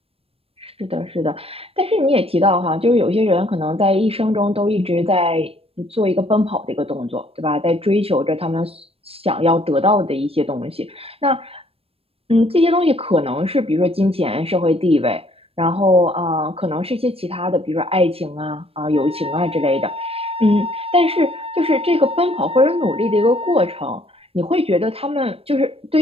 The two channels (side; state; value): left; late; 0.28 ms